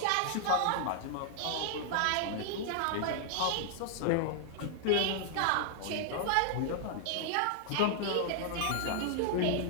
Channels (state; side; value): different; both; correlation -0.01